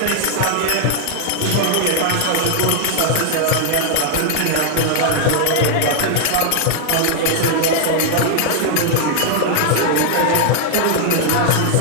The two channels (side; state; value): both; different; correlation 0.00